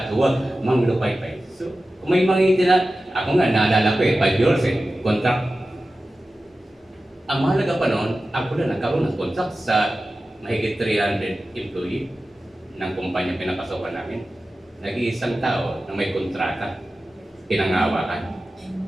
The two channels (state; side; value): normal; both; correlation 0.94